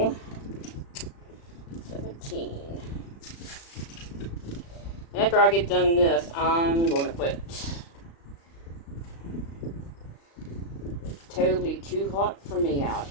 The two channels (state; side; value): late; right; 35 ms